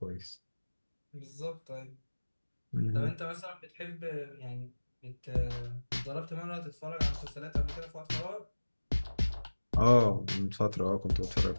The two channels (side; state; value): both; inverted; correlation -1.00